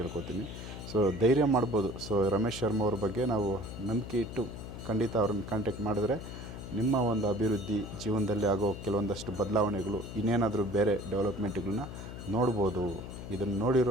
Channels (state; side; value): noise; left; hum, 10 dB below the sound